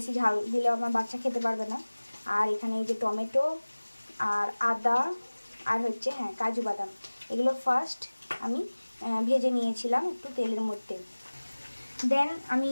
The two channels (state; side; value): inverted; both; correlation -1.00